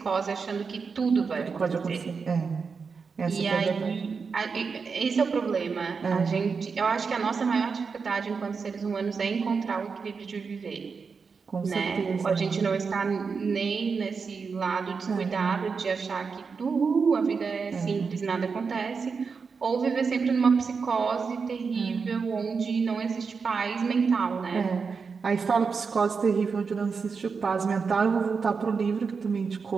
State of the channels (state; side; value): quieter; left; 5.3 dB